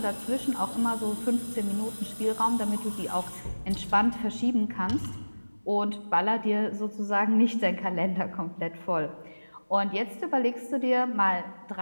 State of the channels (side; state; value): both; inverted; correlation -1.00